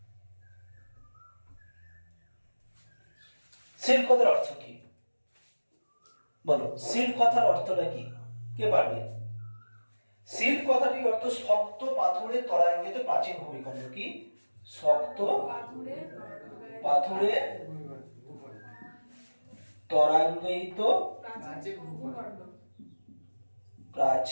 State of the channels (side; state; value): both; inverted; correlation -1.00